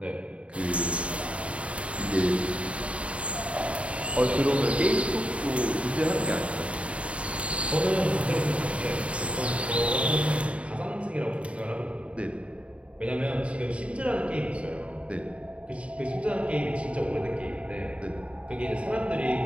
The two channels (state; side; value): late; left; 0.062 ms